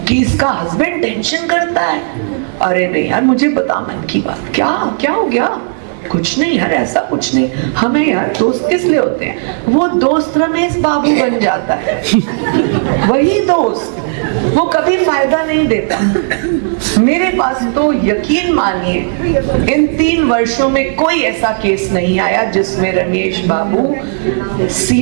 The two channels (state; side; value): silent; left; digital silence